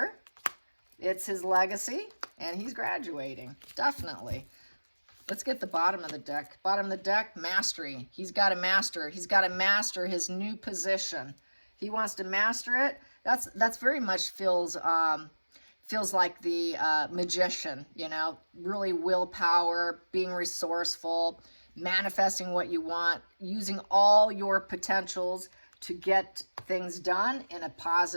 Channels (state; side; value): inverted; both; correlation -1.00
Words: It's his legacy, and he's graduating. Definitely. Let's get the bottom of the deck. Bottom of the deck, mastery. He's got to master. He's got to master his new position. He wants to master it. That's very much feels like the magician, you know, really willpower, being resourceful, manifesting what you want, using all your potentials to get things done in a